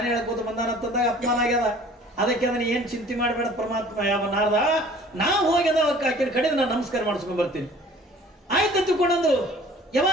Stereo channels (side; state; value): both; normal; correlation 0.50